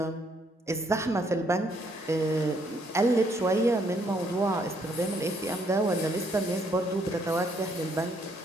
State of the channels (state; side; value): normal; both; correlation 0.70